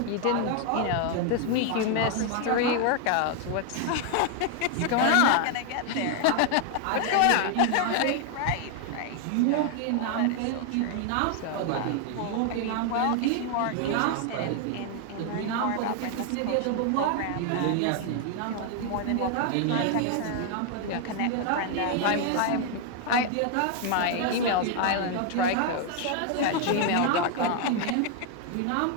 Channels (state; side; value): different; both; correlation 0.00